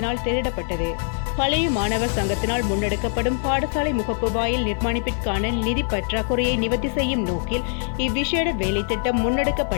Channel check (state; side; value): silent; right; 56 dB below the other